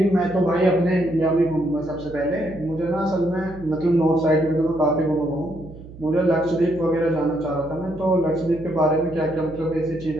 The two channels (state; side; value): noise; right; hum, 17 dB below the sound